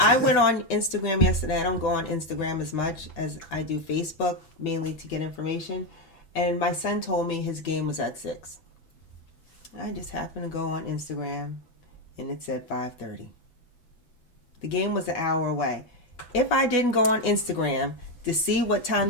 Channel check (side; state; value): right; late; 6.0 ms